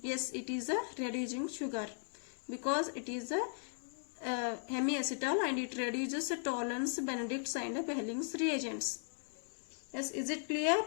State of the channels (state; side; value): silent; right; digital silence